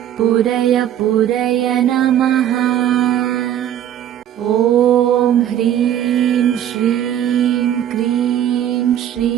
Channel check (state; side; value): quieter; left; 10.8 dB